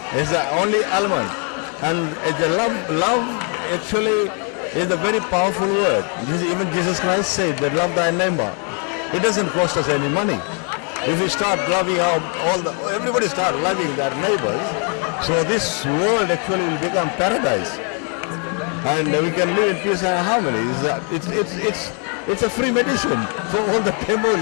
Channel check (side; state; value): right; quieter; 39.4 dB